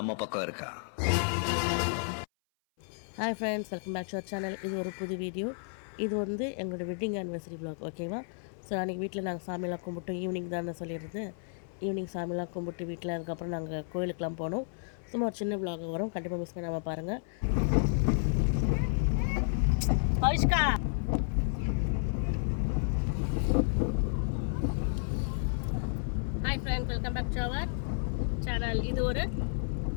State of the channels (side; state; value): right; silent; 57 dB below the other